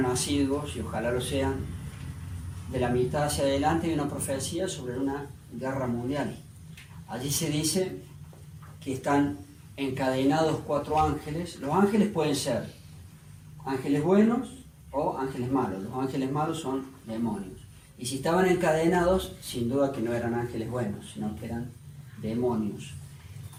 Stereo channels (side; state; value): both; identical; correlation 1.00